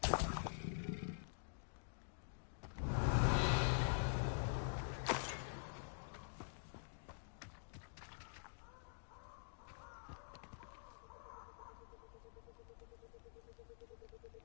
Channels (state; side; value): silent; right; digital silence